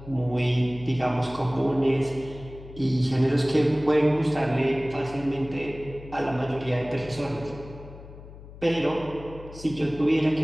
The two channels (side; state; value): left; noise; hum, 16 dB below the sound